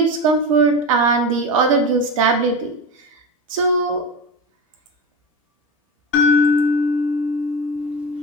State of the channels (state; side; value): normal; both; correlation 0.21